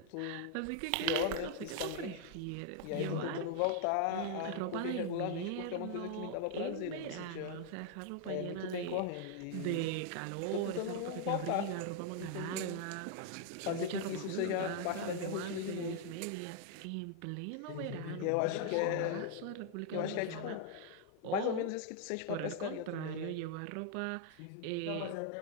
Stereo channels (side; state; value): both; different; correlation 0.00